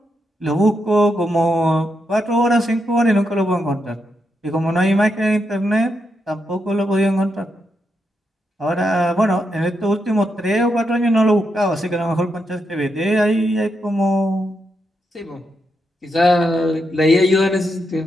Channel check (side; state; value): both; normal; correlation 0.83